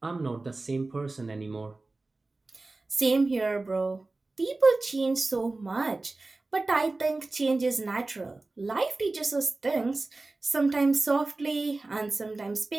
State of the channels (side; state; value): left; quieter; 3.3 dB